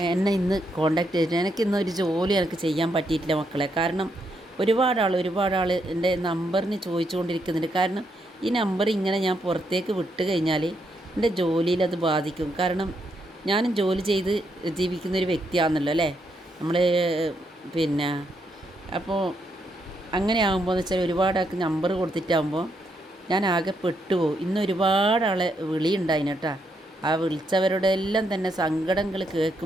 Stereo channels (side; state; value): both; normal; correlation 0.78